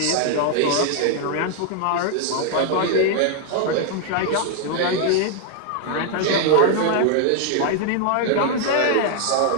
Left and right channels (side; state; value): both; different; correlation 0.00